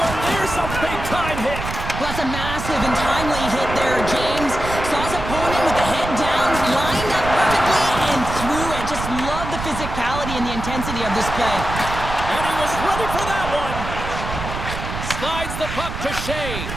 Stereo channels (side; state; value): right; noise; rumble, 7 dB below the sound